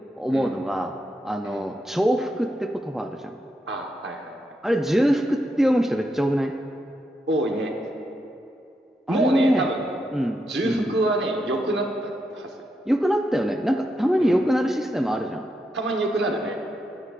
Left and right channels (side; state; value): both; normal; correlation 0.83